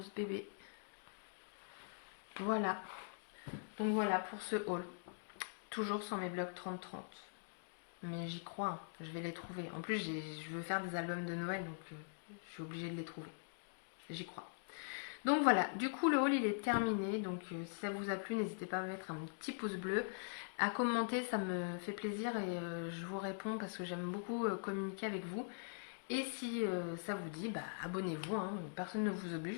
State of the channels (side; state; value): right; silent; digital silence